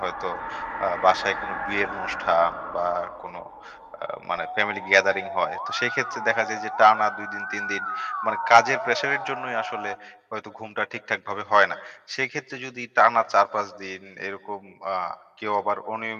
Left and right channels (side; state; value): both; identical; correlation 1.00